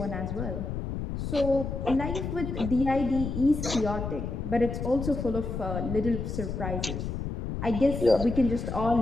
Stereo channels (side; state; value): left; noise; rumble, 4 dB below the sound